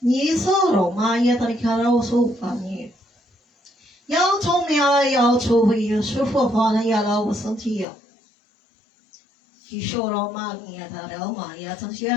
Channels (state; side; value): drops out; right; at 7.9 s